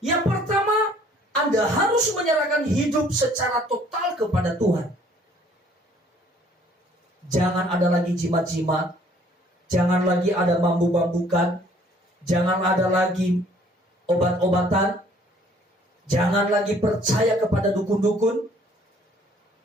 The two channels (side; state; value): both; normal; correlation 0.59